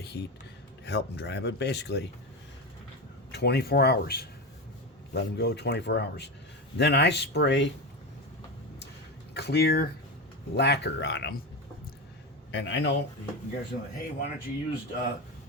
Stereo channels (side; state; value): both; normal; correlation 0.18